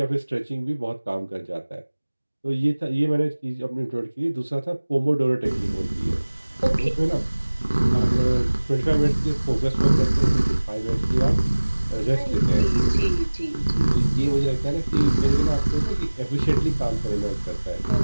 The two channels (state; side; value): inverted; both; correlation -1.00